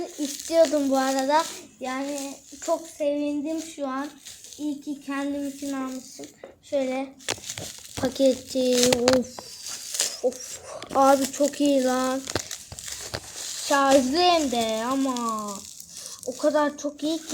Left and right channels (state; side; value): identical; both; correlation 1.00